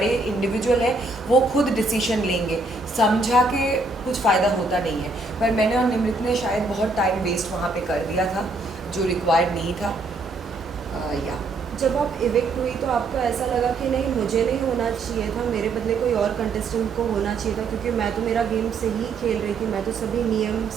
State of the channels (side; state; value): left; quieter; 3.5 dB